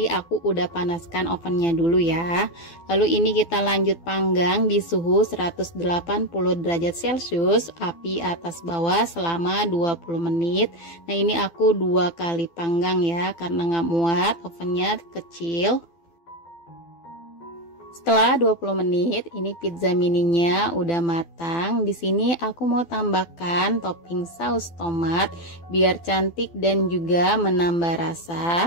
aku udah panaskan ovennya dulu ya. Lalu ini kita lanjut panggang di suhu 180 derajat Celcius, api atas bawah selama 20 menit. Nah ini aku 2 kali panggang ya, karena nggak muat, ovennya kecil. Setelah 20 menit, ini pizza mininya udah matang. Di sini aku mau tambahkan topping saus tomat biar cantik dan juga menambah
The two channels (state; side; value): late; right; 12 ms